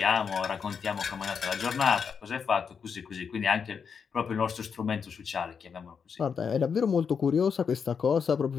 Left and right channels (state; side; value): quieter; right; 6.4 dB